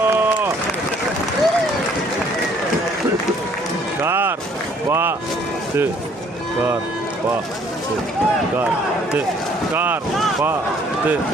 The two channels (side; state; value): both; normal; correlation 0.61